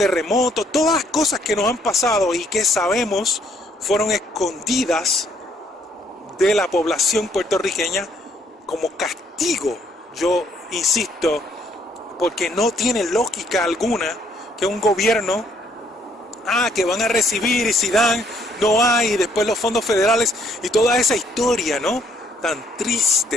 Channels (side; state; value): both; normal; correlation 0.67